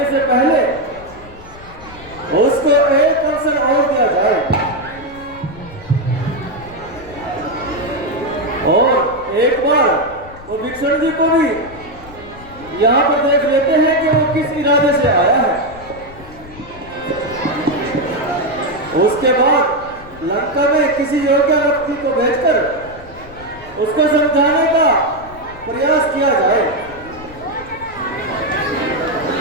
से पहले उसको एक अवसर और दिया जाए और एक बार वो विभीषण जी को भी यहाँ पर देख लेते हैं कि वो किस इरादे से आया है। उसके बाद लंका में किसी योग्य व्यक्ति को भेजकर उसको समझाने का प्रयास किया जाए।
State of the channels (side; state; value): left; noise; rumble, 19 dB below the sound